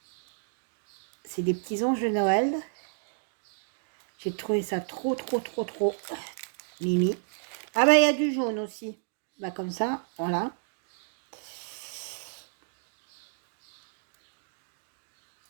C'est des petits anges de Noël. J'ai trouvé ça trop, trop, trop, trop mimi. Ah bah, il y a du jaune aussi. Bah, comme ça, voilà.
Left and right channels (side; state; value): left; silent; digital silence